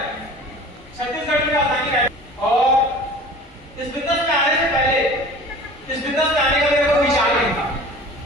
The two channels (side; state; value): both; normal; correlation 0.42